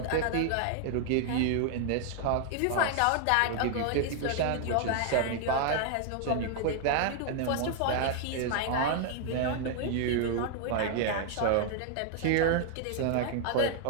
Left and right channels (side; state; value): both; different; correlation 0.00